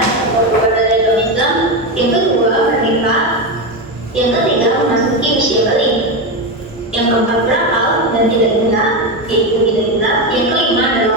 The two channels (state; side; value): normal; both; correlation 0.13